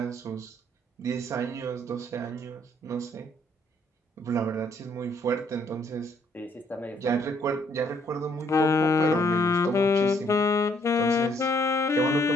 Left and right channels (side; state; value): both; normal; correlation 0.67